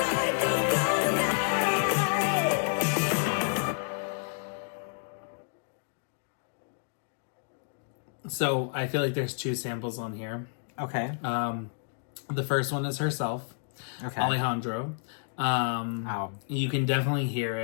Don't call tonight. So, I feel like there's two samples on here. Okay. The first one is herself, Okay. Alejandro. You can definitely hear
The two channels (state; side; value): silent; right; digital silence